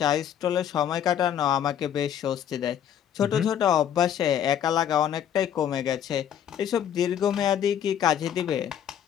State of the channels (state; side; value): quieter; right; 9.6 dB